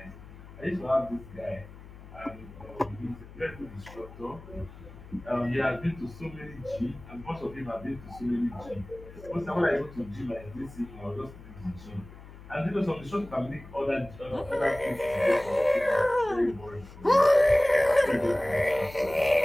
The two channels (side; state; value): left; noise; hum, 17 dB below the sound